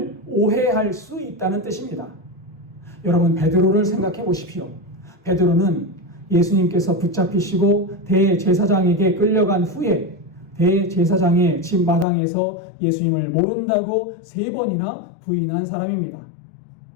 오해할 수 있다는 뜻입니다. 여러분, 베드로를 생각해 보십시오. 베드로는 예수님께서 붙잡히시고 대제사장에게 끌려간 후에 대제사장의 집 마당에서 예수님을 모른다고 3번이나 부인한 사람입니다.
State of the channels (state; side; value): drops out; right; at 12.1 s